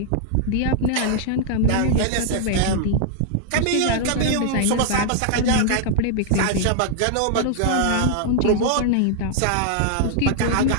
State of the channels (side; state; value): both; different; correlation -0.01